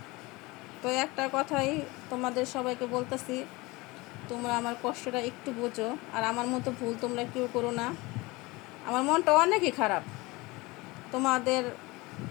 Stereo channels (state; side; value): quieter; right; 22.9 dB